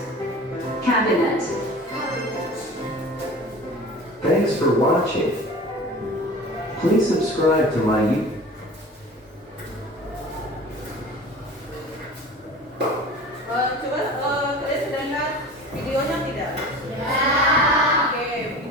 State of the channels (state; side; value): normal; both; correlation 0.39